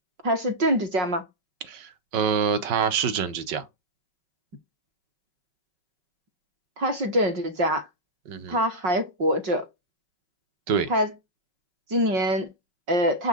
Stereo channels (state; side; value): late; left; 5.4 ms